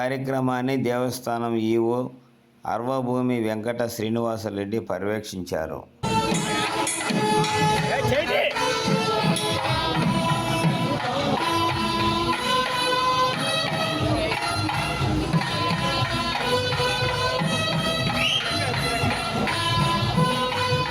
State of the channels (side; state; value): both; identical; correlation 1.00